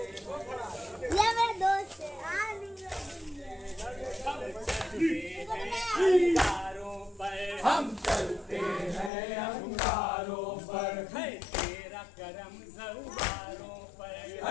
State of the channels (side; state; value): right; drops out; at 9.1 s